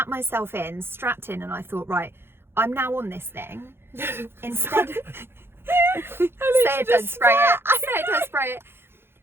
myself in, strapped in, and I thought, right, I'm now on this thing. Instead, say it, don't spray it. Say it, don't spray it.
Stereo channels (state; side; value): late; left; 0.11 ms